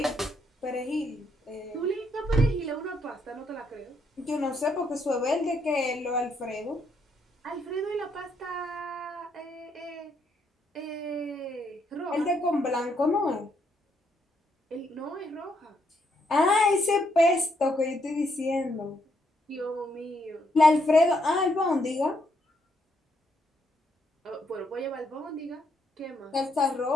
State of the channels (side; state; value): both; normal; correlation 0.75